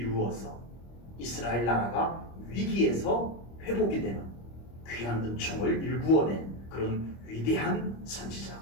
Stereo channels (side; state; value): right; late; 25 ms